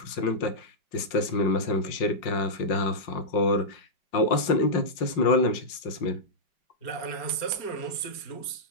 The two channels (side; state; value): right; late; 5.5 ms